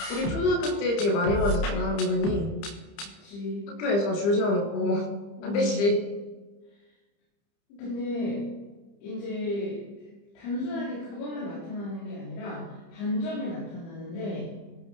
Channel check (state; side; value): late; right; 30 ms